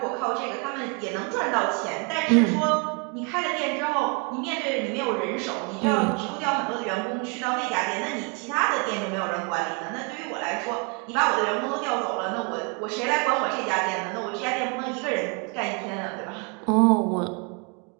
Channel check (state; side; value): quieter; left; 34.6 dB